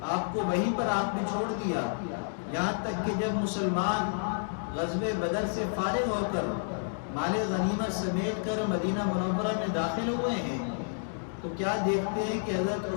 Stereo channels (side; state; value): right; silent; digital silence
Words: آپ کو وہیں پر آپ نے چھوڑ دیا، یہاں تک کہ جب مسلمان غزوہ بدر سے فارغ ہو کر مال غنیمت سمیٹ کر مدینہ منورہ میں داخل ہوئے ہیں، تو کیا دیکھتے ہیں کہ حضرت